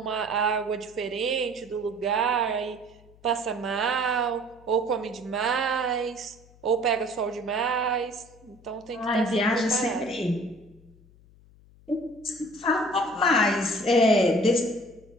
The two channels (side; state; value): left; noise; hum, 26 dB below the sound